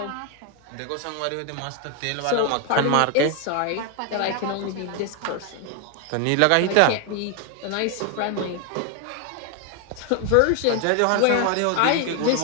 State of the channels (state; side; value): different; both; correlation 0.01